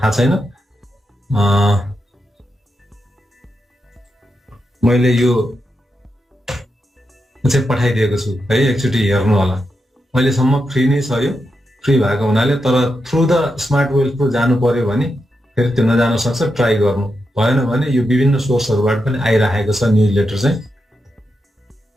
थाहा छैन। मैले यो चाहिँ पठाइदिएको छु है, एकचोटि हेर्नु होला। अहिलेसम्म फ्री नै छ, यो फ्री भएको हुनाले। तर through the smart wealth pro जानु पर्यो भने फेरि त्यो नजान सक्छ, ट्राई गर्नु भएन भने यो विभिन्न सोर्सहरूबाट पनि आइरहेको छ न्युज लेटर चाहिँ।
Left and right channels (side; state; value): both; normal; correlation 0.86